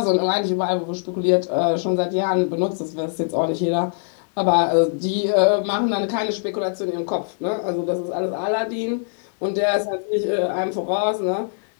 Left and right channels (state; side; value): silent; right; digital silence